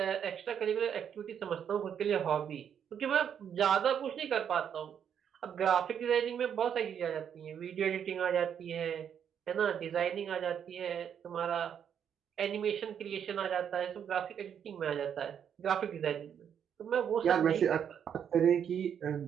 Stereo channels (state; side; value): quieter; left; 8.4 dB